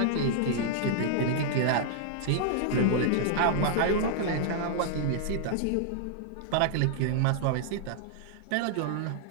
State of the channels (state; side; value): different; both; correlation -0.01